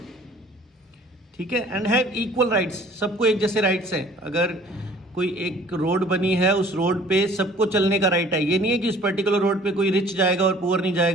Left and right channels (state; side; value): normal; both; correlation 0.52